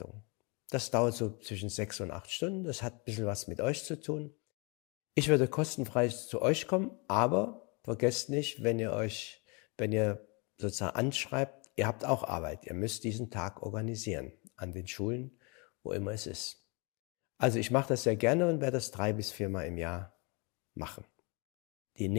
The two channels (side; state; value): right; quieter; 31.4 dB